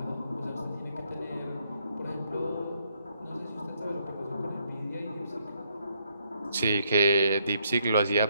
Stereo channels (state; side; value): inverted; both; correlation -0.72